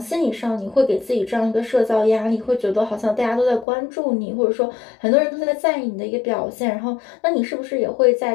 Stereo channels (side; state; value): right; drops out; at 3.7 s